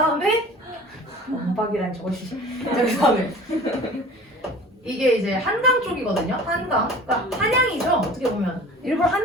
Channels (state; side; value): normal; both; correlation 0.43